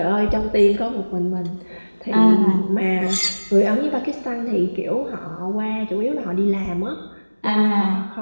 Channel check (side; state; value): both; inverted; correlation -1.00